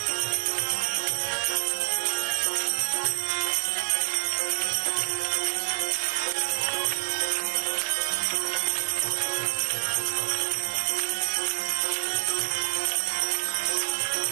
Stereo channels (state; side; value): silent; left; 60 dB below the other